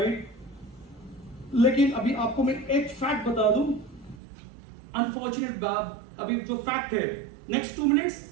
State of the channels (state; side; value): drops out; left; at 4.2 s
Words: लेकिन अभी आपको मैं एक फैक्ट बता दूं, अनफॉर्चुनेट बात, अभी जो फैक्ट है, next 2 minutes